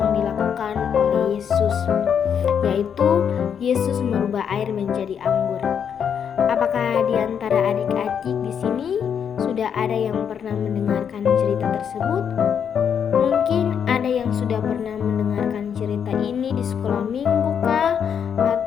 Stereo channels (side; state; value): right; quieter; 7.8 dB